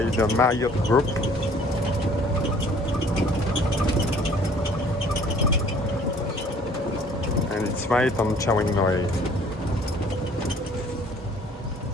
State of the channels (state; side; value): normal; both; correlation 0.55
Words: the Marriott Group. And it's right on Chaweng Noi.